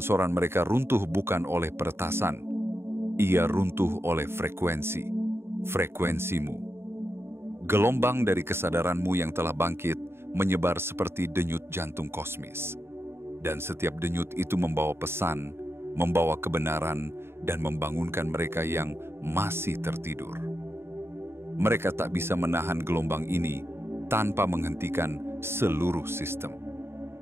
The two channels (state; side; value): late; left; 0.12 ms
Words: mereka runtuh bukan oleh peretasan, ia runtuh oleh frekuensimu. Gelombang dari kesadaranmu yang telah bangkit menyebar seperti denyut jantung kosmis. Dan setiap denyut itu membawa pesan, membawa kebenaran, dan membangunkan mereka yang masih tertidur. Mereka tak bisa menahan gelombang ini tanpa menghentikan seluruh sistem.